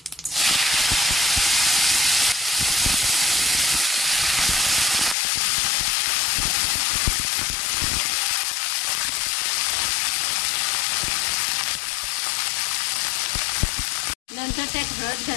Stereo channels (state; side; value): drops out; right; at 5.2 s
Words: नंतर त्यात हळद